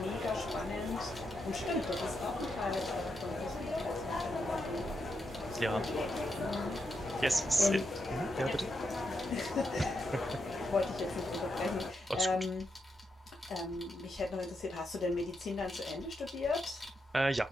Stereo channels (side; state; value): both; normal; correlation 0.83